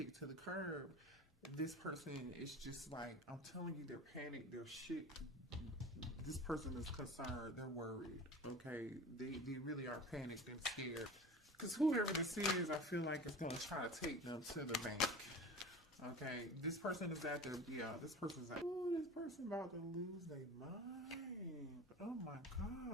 to the curb, this person is just like, I'm telling you, they're panicked, they're shit. This person is concerned, they're worried, okay? They really are panicked and scared. Because whoever this is, I feel like it's going to try to take them to the bank. Okay, this person is at their, this person's like, oh, this person about to lose their mind. Oh my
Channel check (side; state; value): both; normal; correlation 0.35